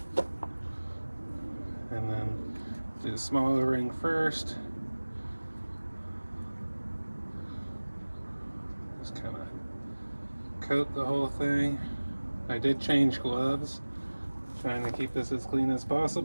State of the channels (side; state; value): both; inverted; correlation -1.00